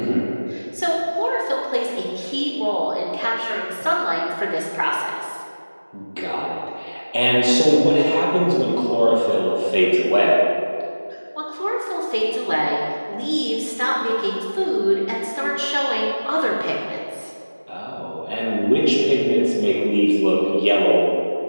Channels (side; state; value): both; inverted; correlation -1.00